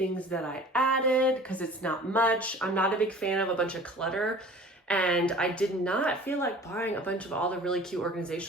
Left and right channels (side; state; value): both; normal; correlation 0.44